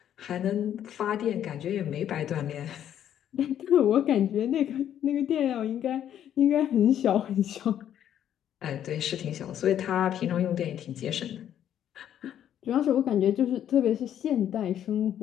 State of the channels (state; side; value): quieter; right; 10.3 dB